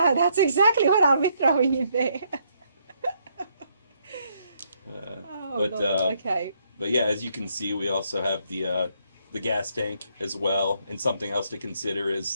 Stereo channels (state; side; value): inverted; both; correlation -0.72